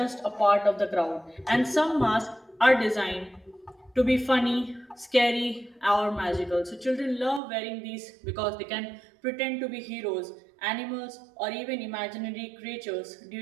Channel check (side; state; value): left; drops out; at 7.4 s